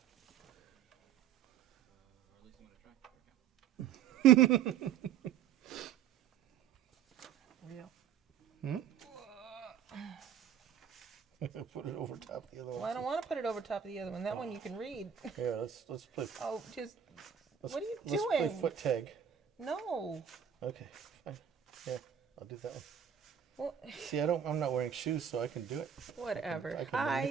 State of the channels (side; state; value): left; quieter; 8.7 dB